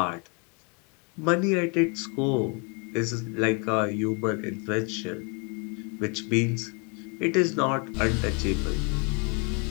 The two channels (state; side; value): quieter; right; 34.2 dB